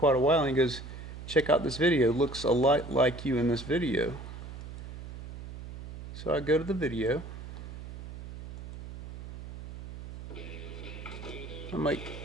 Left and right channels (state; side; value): noise; right; hum, 11 dB below the sound